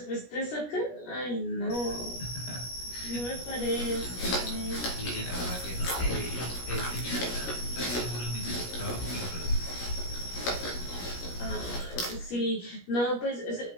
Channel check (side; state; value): right; late; 17 ms